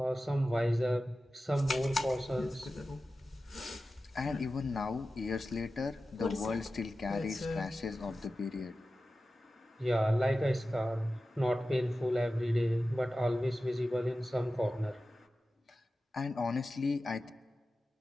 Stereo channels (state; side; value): normal; both; correlation 0.94